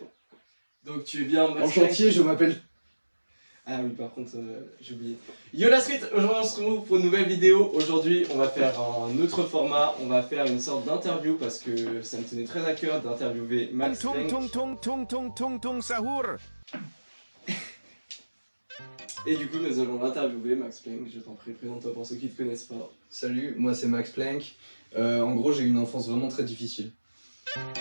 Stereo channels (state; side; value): inverted; both; correlation -1.00